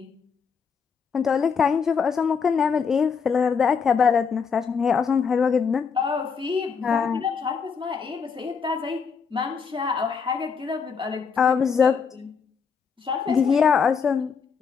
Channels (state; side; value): quieter; right; 6.0 dB